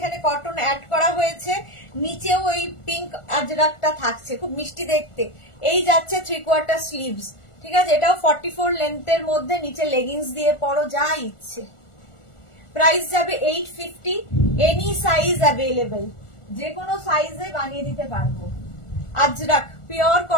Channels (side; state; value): right; late; 1.4 ms